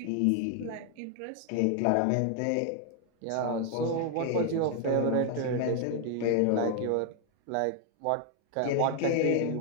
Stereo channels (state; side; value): different; both; correlation 0.00